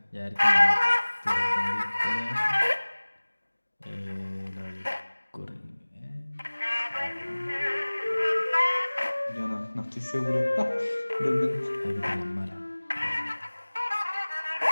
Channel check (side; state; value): both; inverted; correlation -1.00